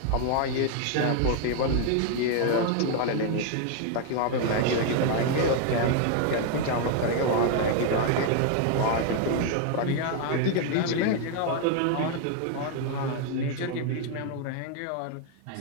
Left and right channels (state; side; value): different; both; correlation 0.01